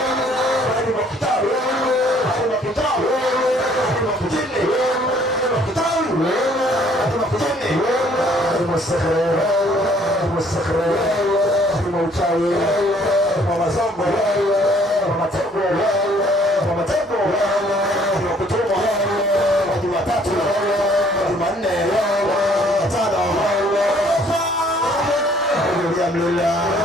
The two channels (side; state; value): both; normal; correlation 0.60